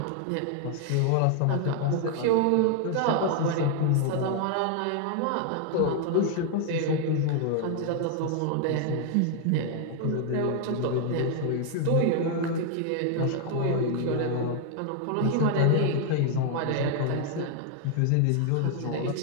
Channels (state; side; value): different; both; correlation 0.00